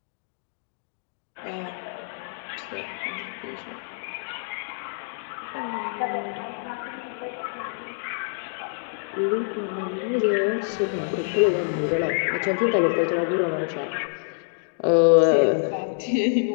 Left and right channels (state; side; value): silent; right; digital silence